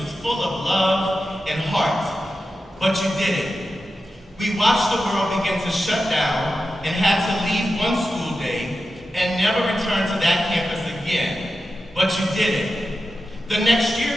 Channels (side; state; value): both; normal; correlation 0.91